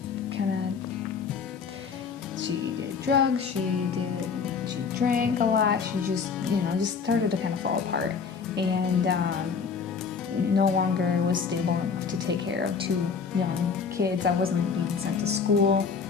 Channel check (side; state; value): right; quieter; 5.8 dB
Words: she did drugs, she drank a lot, she just started to kind of fall apart, and no longer was stable enough to take care of 2 young kids. I wasn't being sent to school